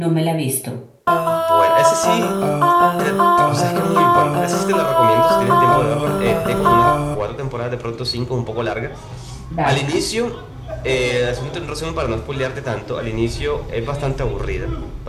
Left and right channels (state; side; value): identical; both; correlation 1.00